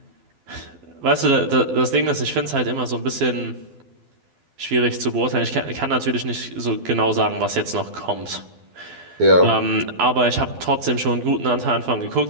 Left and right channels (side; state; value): left; late; 12 ms